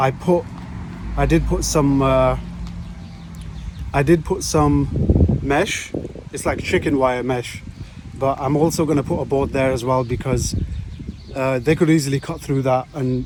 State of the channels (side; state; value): both; identical; correlation 1.00